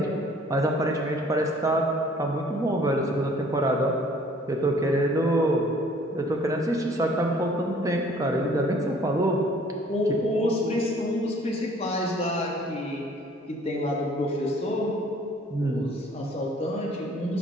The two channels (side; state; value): both; normal; correlation 0.56